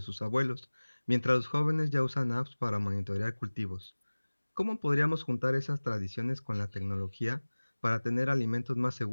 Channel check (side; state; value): both; inverted; correlation -1.00